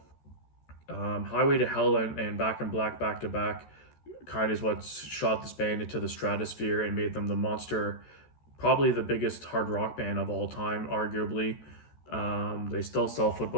Highway to Hell and Back in Black back to back kind of is what shot this band into the stratosphere and made them the monster, probably the biggest hard rock band of all time, arguably. They still sell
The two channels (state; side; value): late; right; 13 ms